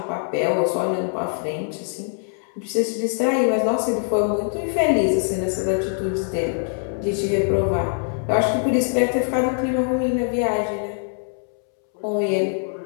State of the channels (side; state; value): right; silent; 63 dB below the other